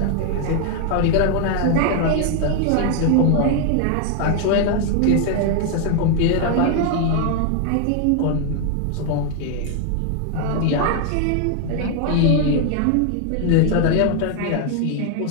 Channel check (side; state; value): both; different; correlation 0.00